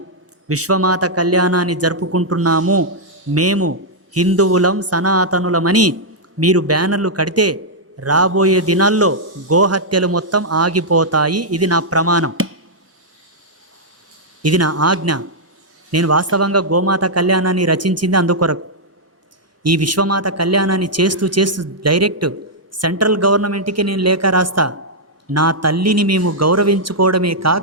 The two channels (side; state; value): both; normal; correlation -0.06